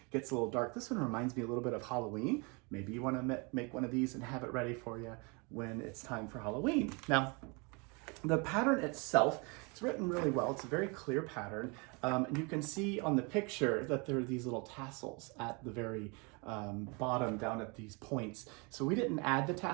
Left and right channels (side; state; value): left; quieter; 30.7 dB